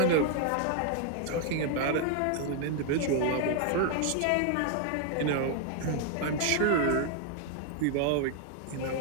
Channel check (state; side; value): different; both; correlation 0.00